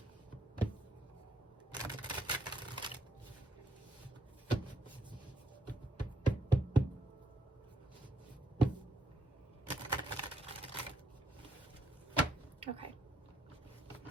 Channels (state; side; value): normal; both; correlation 0.73